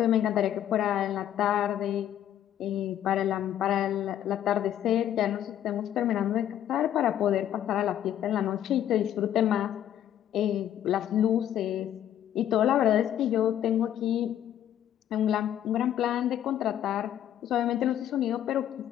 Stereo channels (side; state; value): right; quieter; 11.0 dB